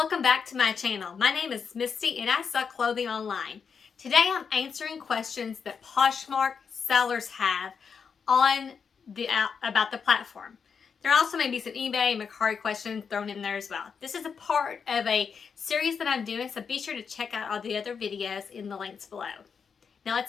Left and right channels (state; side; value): quieter; right; 6.2 dB